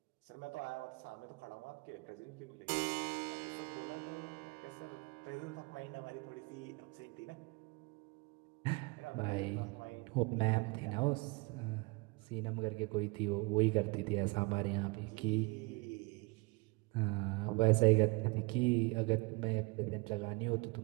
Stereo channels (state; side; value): quieter; left; 27.9 dB